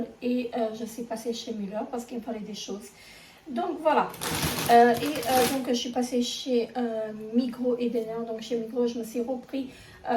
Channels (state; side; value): identical; both; correlation 1.00